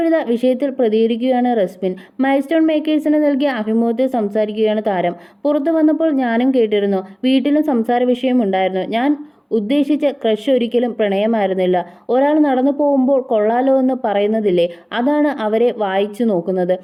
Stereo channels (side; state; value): both; identical; correlation 1.00